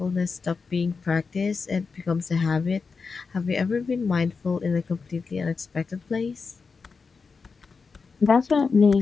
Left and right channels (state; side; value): quieter; right; 4.9 dB